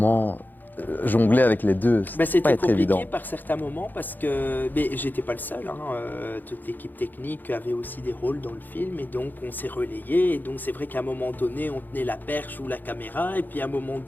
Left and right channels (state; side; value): late; right; 0.087 ms